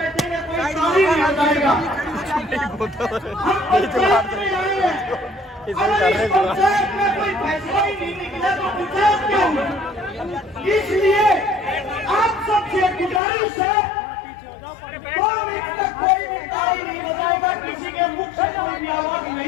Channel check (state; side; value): drops out; right; at 13.2 s